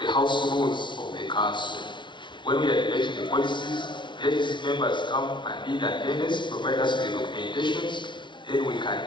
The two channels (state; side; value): late; right; 0.23 ms